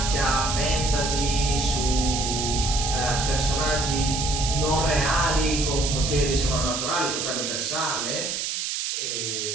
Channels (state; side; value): noise; right; hiss, 2 dB below the sound